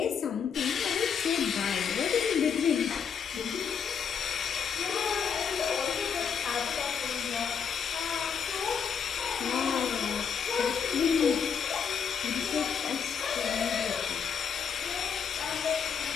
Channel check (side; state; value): right; quieter; 6.9 dB